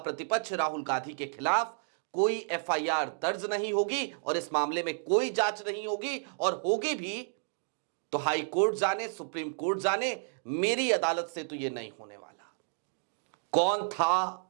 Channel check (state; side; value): silent; left; digital silence